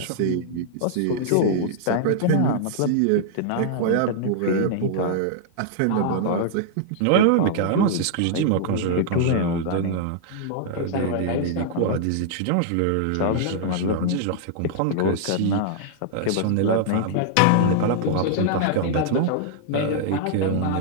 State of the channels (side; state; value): both; different; correlation -0.01